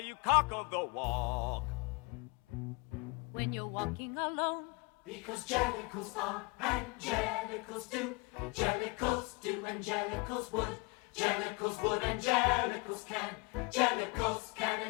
cock of the walk? When you're walking alone? Because jellicles are and jellicles do. Jellicles do and jellicles would. Jellicles would and jellicles can. Jellicles can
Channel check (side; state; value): right; quieter; 28.6 dB